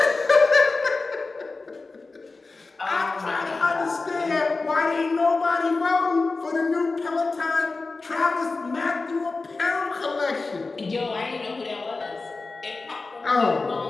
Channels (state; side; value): quieter; right; 3.8 dB